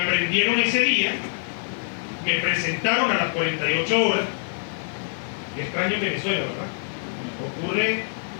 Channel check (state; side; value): silent; right; digital silence